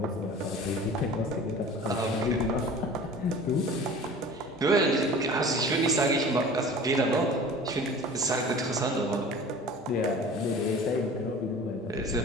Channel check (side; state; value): both; normal; correlation 0.41